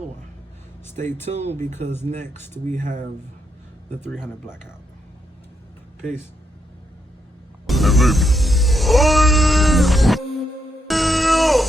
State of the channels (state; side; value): normal; both; correlation 0.79